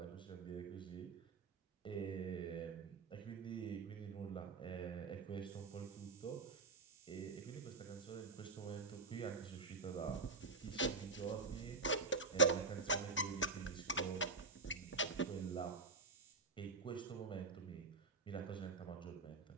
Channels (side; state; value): left; quieter; 3.9 dB